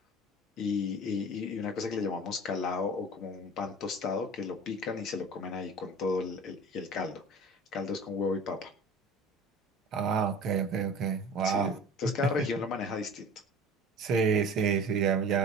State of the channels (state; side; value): normal; both; correlation 0.40